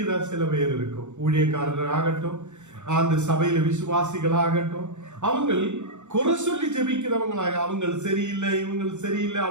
சில பேர் இருக்கும். ஊழியக்காரர் ஆகட்டும், அந்த சபையில விசுவாசிகள் ஆகட்டும், அவங்கள் குறை சொல்லி ஜபிக்கிறவங்களாக, அவங்க சரியில்லை, இவங்க சரியில்லை,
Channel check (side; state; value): left; late; 0.84 ms